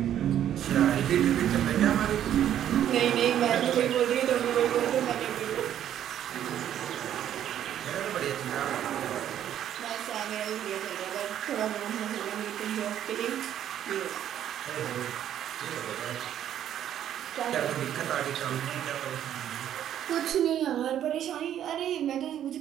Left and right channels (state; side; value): quieter; left; 10.7 dB